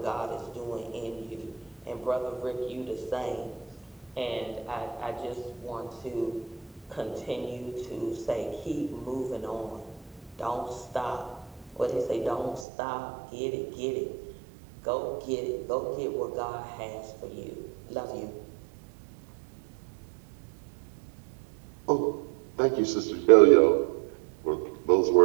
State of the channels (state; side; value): drops out; left; at 12.7 s